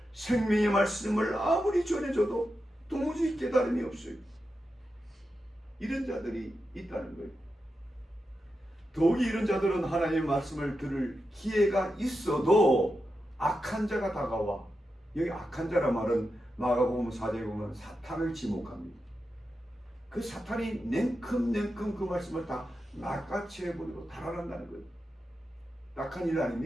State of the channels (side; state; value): both; normal; correlation 0.89